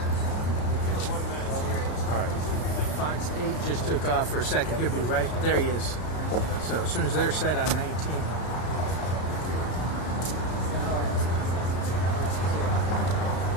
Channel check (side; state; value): right; late; 33 ms